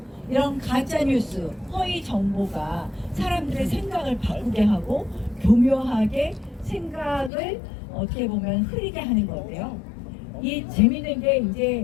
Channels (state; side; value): drops out; right; at 7.3 s